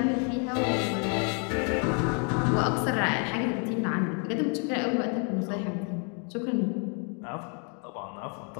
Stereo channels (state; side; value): quieter; right; 38.5 dB